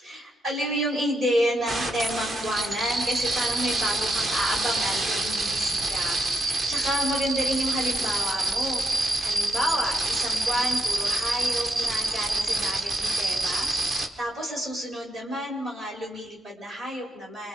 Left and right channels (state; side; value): normal; both; correlation 0.79